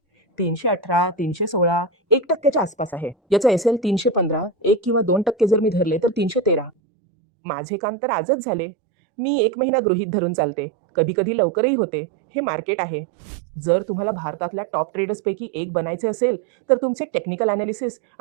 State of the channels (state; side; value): drops out; left; at 6.7 s